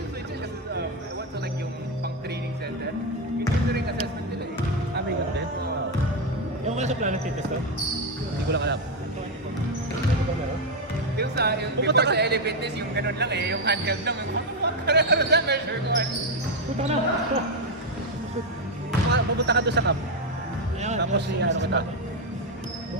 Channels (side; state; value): both; normal; correlation 0.05